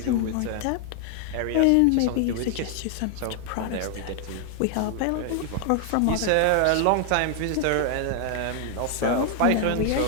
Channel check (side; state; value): both; different; correlation 0.00